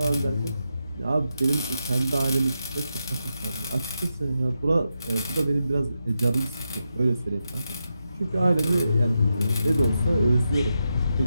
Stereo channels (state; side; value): inverted; both; correlation -0.87